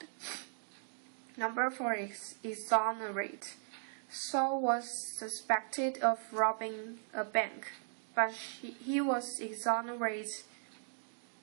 Number 4 is exonerate. Saul was suspected of robbing a bank, but he was exonerated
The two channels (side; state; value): left; silent; digital silence